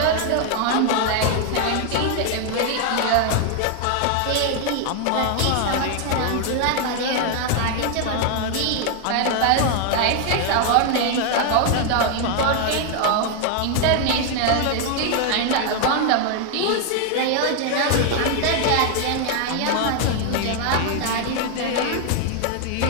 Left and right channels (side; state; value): both; different; correlation 0.00